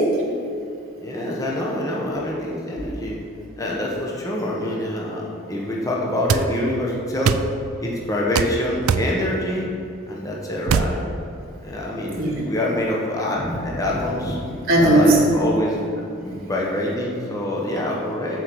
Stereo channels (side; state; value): both; normal; correlation 0.47